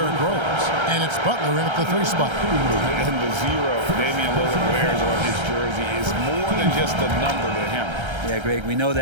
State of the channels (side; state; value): left; late; 1.3 ms